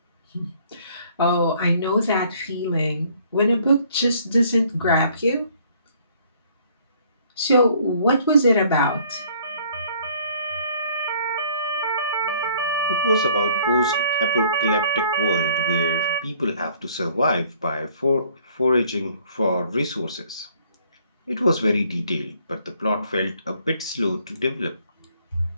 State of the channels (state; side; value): inverted; both; correlation -0.60